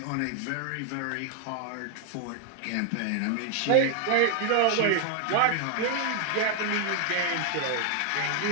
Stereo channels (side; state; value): both; different; correlation 0.00